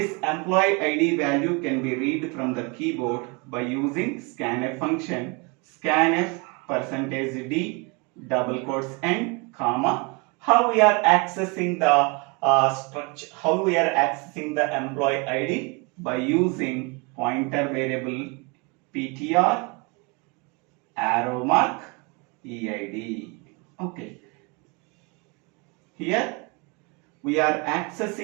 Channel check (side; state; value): left; quieter; 30.1 dB